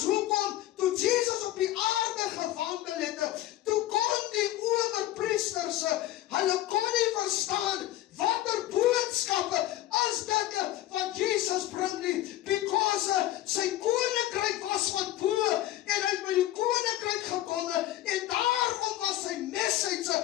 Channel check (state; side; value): quieter; right; 14.5 dB